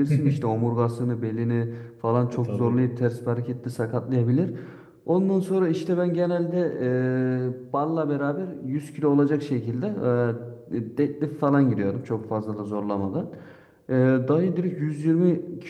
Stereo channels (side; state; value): both; identical; correlation 1.00